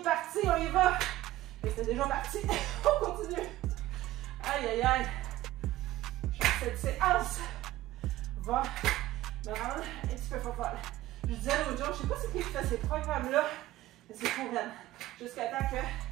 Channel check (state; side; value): quieter; left; 15.7 dB